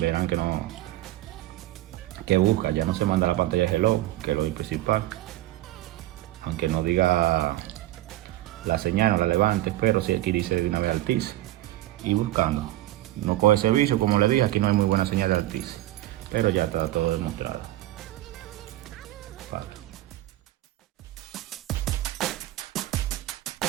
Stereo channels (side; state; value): left; quieter; 16.0 dB